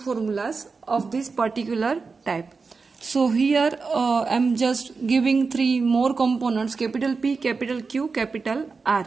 of this particular type. So here I'm just giving three more components: capital P, capital Q, capital R.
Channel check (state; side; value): quieter; left; 4.6 dB